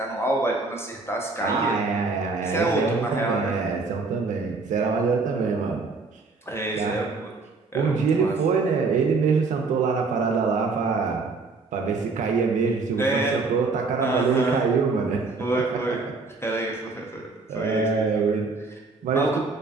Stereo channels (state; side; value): quieter; left; 4.0 dB